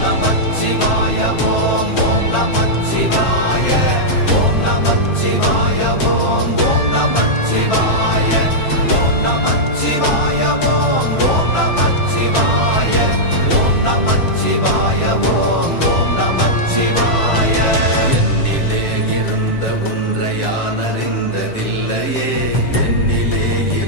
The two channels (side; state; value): right; late; 7.6 ms